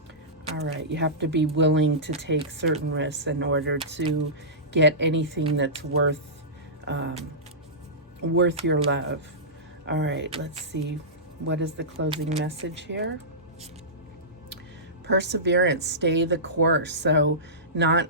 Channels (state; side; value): normal; both; correlation -0.19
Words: All right, you have to be willing to take certain risks in order to get anything that's worth your love. All right, let's see. What is the closing message here? Perseverance, stay the course. So not